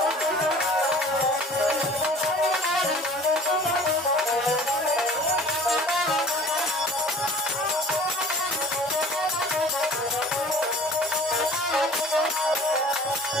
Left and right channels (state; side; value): normal; both; correlation 0.46